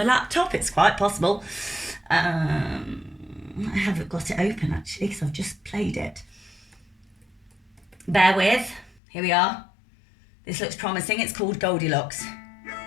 laptop? It's quite possible. I haven't got it open actually because I've just played it. Bear with. Here we are. This looks promising. It's called Goldilocks.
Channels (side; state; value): right; drops out; at 9.0 s